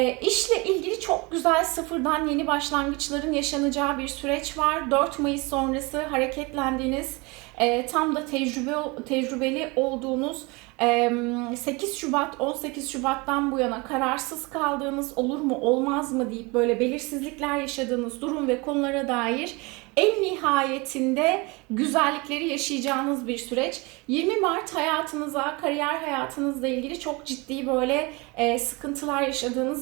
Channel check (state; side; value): quieter; left; 26.6 dB